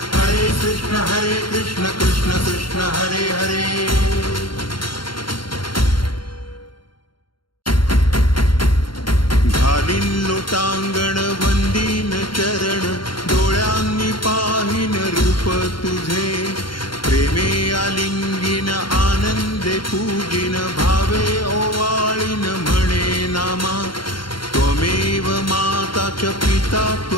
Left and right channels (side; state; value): right; late; 0.73 ms